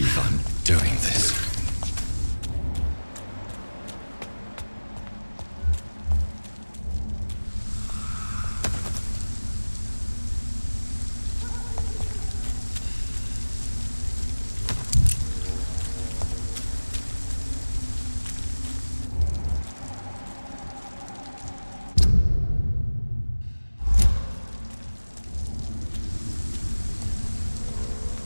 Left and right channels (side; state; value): both; inverted; correlation -1.00